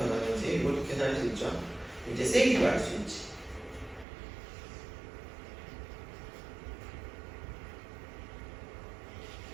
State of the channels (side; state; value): left; drops out; at 4.0 s